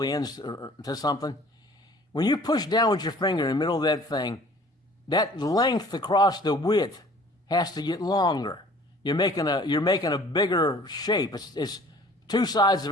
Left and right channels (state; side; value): normal; both; correlation 0.51